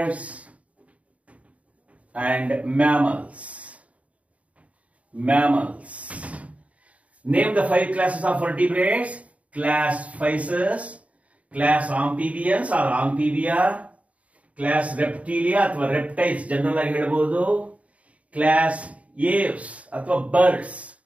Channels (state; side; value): late; left; 0.067 ms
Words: and mammals. Name the 5 classes of vertebrates. Class Pisces, class Amphibians or Amphibia, class Reptilia ಅಥವಾ reptiles ಜನರಲ್ ಆಗಿ ಹೇಳಬಹುದು, ಕ್ಲಾಸ್ ಏವ್ಸ್ ಅಥವಾ ಬರ್ಡ್ಸ್,